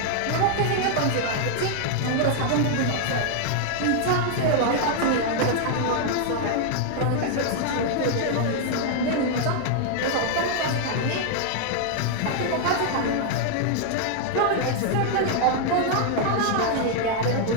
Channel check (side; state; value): both; different; correlation 0.00